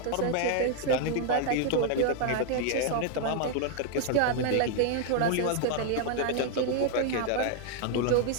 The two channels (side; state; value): both; different; correlation 0.00